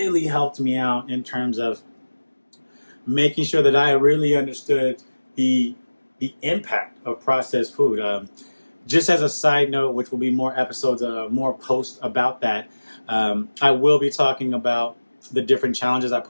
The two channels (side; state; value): both; inverted; correlation -1.00